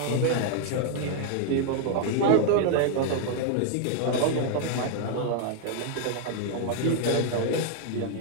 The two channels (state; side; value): different; both; correlation 0.00